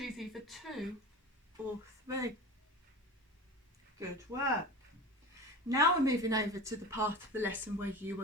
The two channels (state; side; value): normal; both; correlation 0.31